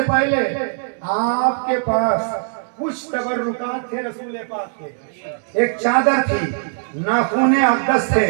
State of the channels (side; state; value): left; silent; digital silence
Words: پہلے آپ کے پاس کچھ تبرکات تھے رسول پاک کے، ایک چادر تھی، ناخون اقدس تھے،